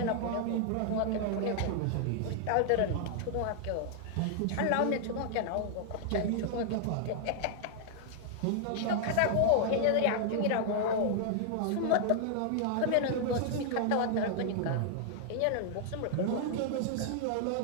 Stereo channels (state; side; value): different; both; correlation -0.01